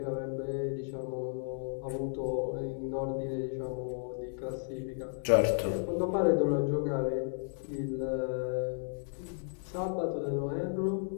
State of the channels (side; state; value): right; silent; 55 dB below the other